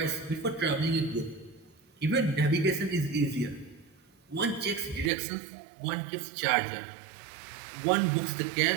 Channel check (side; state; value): left; drops out; at 5.1 s